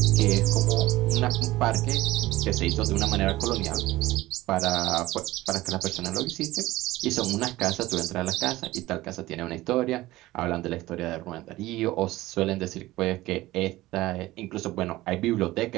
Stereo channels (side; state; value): left; quieter; 17.7 dB